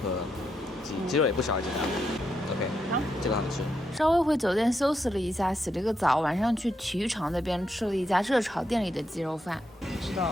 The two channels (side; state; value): both; normal; correlation 0.81